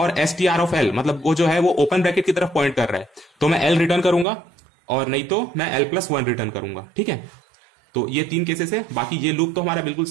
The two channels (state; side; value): drops out; left; at 4.2 s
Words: STR ऑफ L, मतलब वो जो है वो ओपन ब्रैकेट की तरफ पॉइंट कर रहा है, तो मैं L रिटर्न करूंगा, और नहीं तो मैं L+1 रिटर्न करूंगा, ठीक है। तो ये 3 केसेस है। बाकी ये लूप तो हमारा बिल्कुल